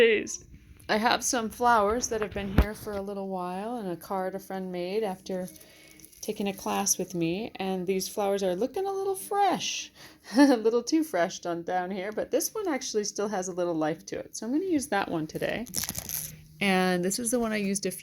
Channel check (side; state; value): both; identical; correlation 1.00